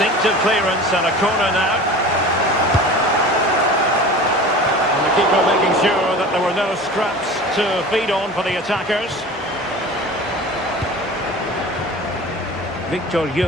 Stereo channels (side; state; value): both; normal; correlation 0.38